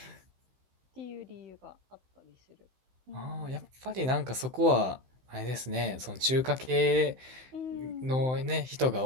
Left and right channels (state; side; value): late; left; 16 ms